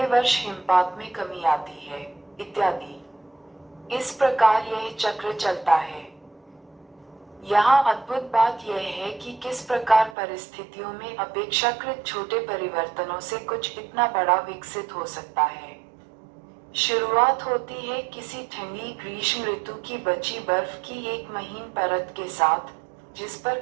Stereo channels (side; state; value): left; drops out; at 10.2 s